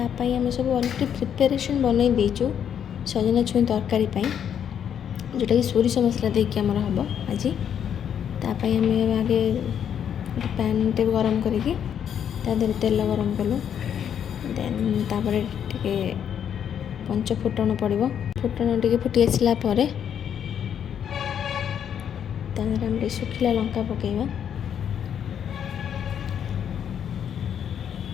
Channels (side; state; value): right; quieter; 8.7 dB